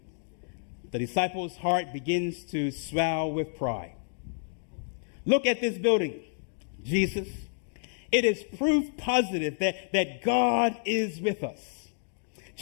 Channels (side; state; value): right; silent; digital silence